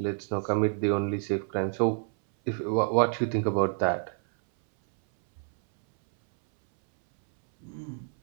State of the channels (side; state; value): left; silent; 59 dB below the other